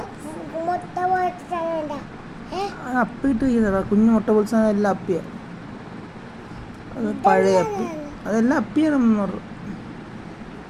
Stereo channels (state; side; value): identical; both; correlation 1.00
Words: അപ്പിട്ട് ചെയ്യുന്നതാ കുഞ്ഞു മുട്ട പൊളിച്ച എല്ലാം അപ്പിയ. അത് പഴയ അപ്പി അതെല്ലാം അപ്പിയാണ്.